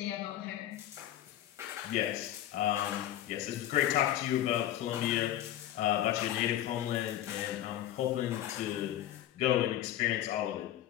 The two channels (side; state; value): right; quieter; 12.6 dB